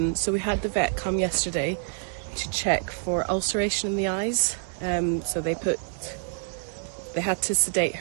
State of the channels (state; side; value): silent; left; digital silence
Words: So we had the vet come yesterday to check for ulceration in the eyes. So they had to sedate